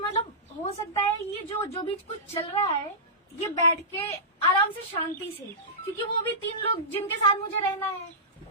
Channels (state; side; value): normal; both; correlation -0.17